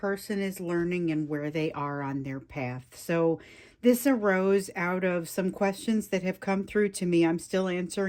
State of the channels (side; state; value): both; identical; correlation 1.00